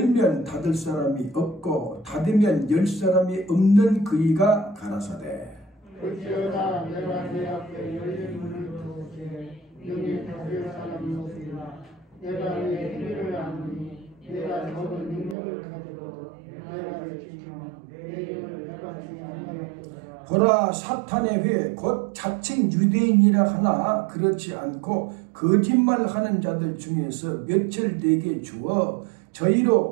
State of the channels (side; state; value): left; drops out; at 15.4 s